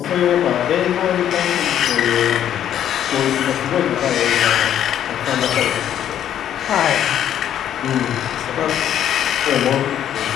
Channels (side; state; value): right; quieter; 10.5 dB